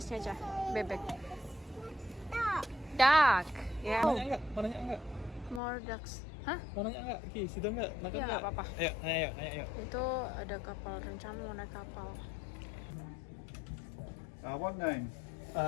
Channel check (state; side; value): drops out; right; at 5.6 s